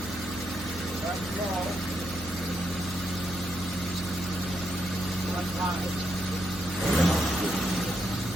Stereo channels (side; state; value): right; noise; hum, 12 dB below the sound